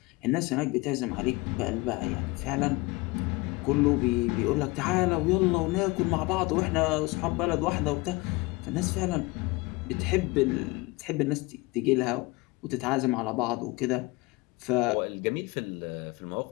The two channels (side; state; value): right; quieter; 23.4 dB